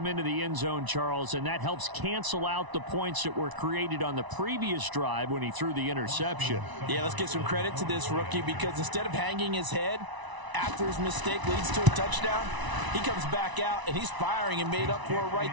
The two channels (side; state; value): left; late; 1.0 ms